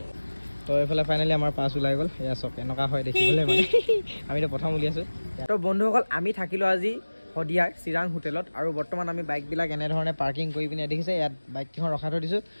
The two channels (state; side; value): inverted; both; correlation -1.00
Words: তো এইফালে ফাইনেলি আমাৰ পাছ ওলাই গ'ল এয়া চব এনেকুৱা হয় দেখিবলৈ মানে আমিতো প্ৰথম উলিয়াইছোঁ তো বন্ধুসকল আমি থাকিলোঁ আজি শদিয়াৰ চিৰাং হোটেলত আৰু বৰ্তমান আমি বাইকবিলাক এনেধৰণে পাৰ্কিং কৰি পিনে দেখিছে ইয়াত বাইককেইখন ৰখাই থৈ দিছোঁ